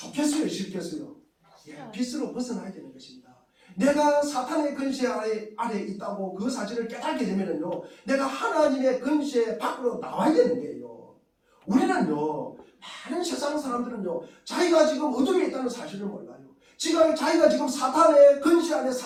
싫겠어요? 빛으로 벗어나야 되는 것입니다. 내가 사탄의 근세 아래 있다고 그 사실을 깨닫게 되면요 내가 하나님의 근세 밖으로 나와야 되는 거예요. 우리는요 많은 세상 사람들은요 자기가 지금 어둠에 있다는 사실을 몰라요. 자기가 지금 사탄의 근세 안에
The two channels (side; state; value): both; identical; correlation 1.00